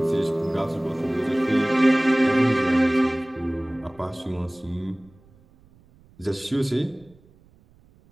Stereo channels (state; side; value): noise; right; rumble, 29 dB below the sound